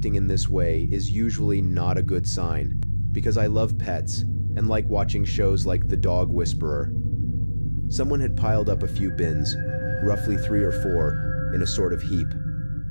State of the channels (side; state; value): both; inverted; correlation -1.00